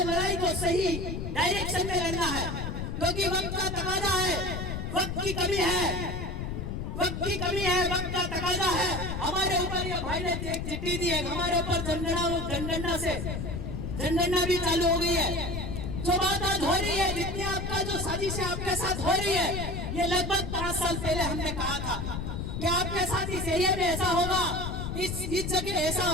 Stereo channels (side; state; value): left; noise; rumble, 4 dB below the sound